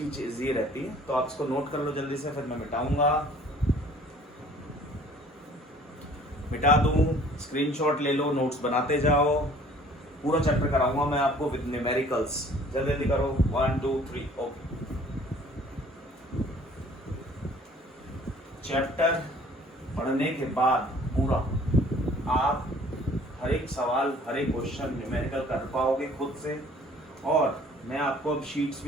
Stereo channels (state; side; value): normal; both; correlation 0.53